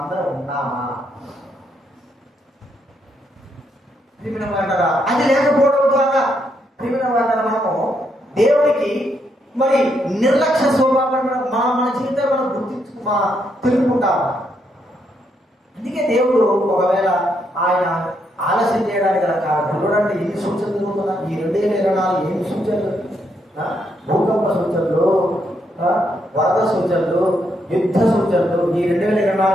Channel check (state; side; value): normal; both; correlation 0.77